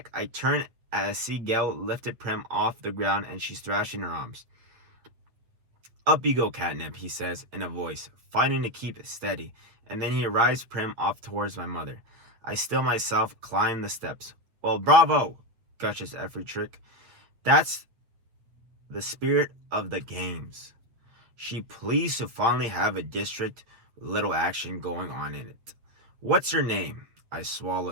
I turn as I see Gail lifted Prim off the ground and she's thrashing her arms. Up you go, Catnip, he says in a voice, fighting to keep steady, and then he arrives Prim off towards my mother. I still myself climb the steps. Well, bravo, gushes Efritrick. That's the spirit of the games. She pleased to finally have a district with little action going on in it. What's your name? I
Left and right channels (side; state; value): left; late; 8.4 ms